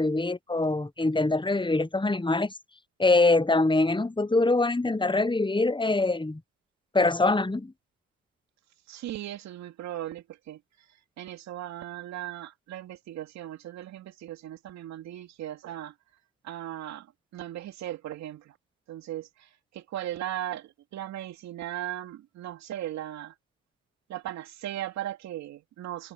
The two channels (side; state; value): both; normal; correlation 0.58